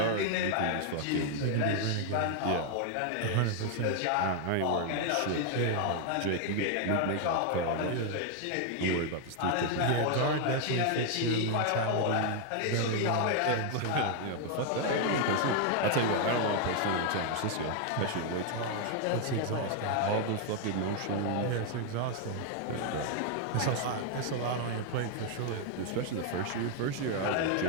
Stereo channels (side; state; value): both; different; correlation 0.00